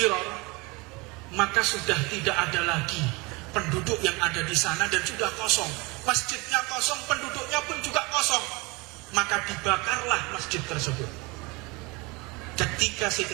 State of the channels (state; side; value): quieter; left; 26.0 dB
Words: maka sudah tidak ada lagi penduduk yang ada di sana dan sudah kosong. Masjidnya kosong, penduduknya pun juga kosong. Maka dibakarlah masjid tersebut. Ketika